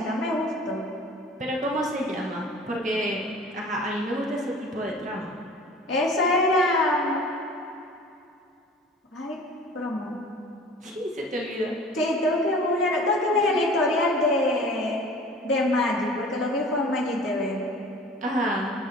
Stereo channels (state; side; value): normal; both; correlation 0.44